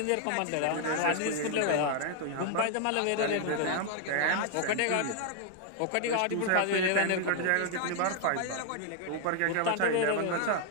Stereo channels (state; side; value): different; both; correlation 0.00